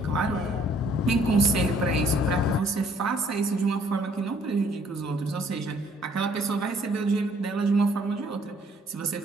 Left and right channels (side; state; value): both; normal; correlation 0.62